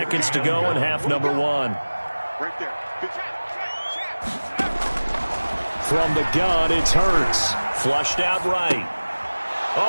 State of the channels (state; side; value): inverted; both; correlation -1.00